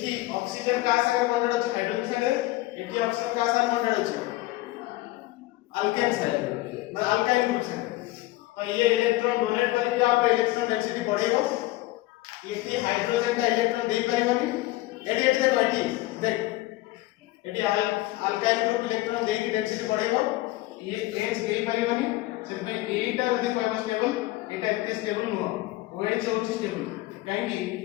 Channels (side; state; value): right; quieter; 18.4 dB